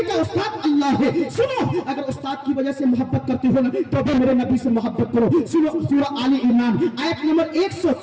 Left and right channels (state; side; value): identical; both; correlation 1.00